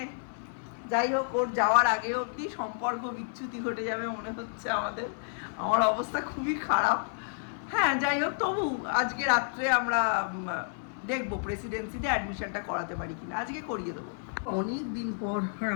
যাই হোক ওর যাওয়ার আগে অবধি সম্পর্ক বিচ্যুতি ঘটে যাবে মনে হচ্ছে আমাদের। আমার অবস্থা খুবই খারাপ। হ্যাঁ যাই হোক, তবু আজকে রাত্রে আমরা দেখবো প্রেসিডেন্সিতে অ্যাডমিশনটা করাতে পারি কিনা, আজকে করিয়ে দেবো। অনেক দিন পর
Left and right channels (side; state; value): right; silent; 57 dB below the other